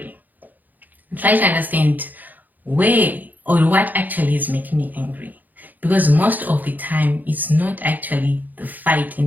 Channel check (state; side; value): late; left; 0.084 ms